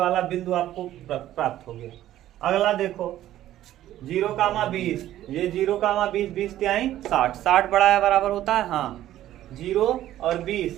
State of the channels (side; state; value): left; quieter; 13.3 dB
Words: बिंदु आपको प्राप्त हो गया। अगला देखो 0,20, ये 0,20, 20 तिहाई 60, 60 बड़ा है बराबर होता है, हाँ। 0 और